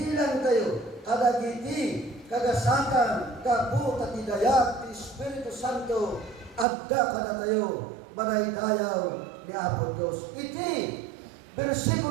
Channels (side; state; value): left; drops out; at 6.7 s